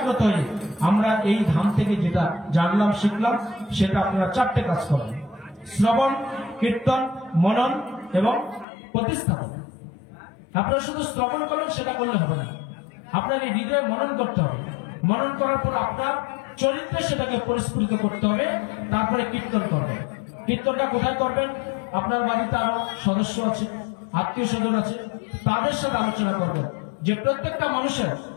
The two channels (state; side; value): drops out; right; at 8.7 s